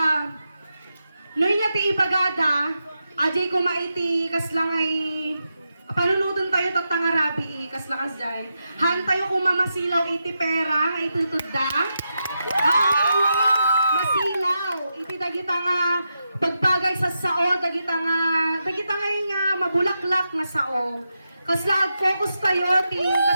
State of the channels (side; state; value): both; inverted; correlation -0.87